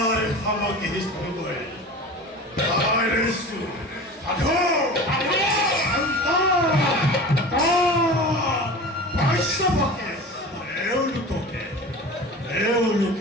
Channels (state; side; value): normal; both; correlation 0.35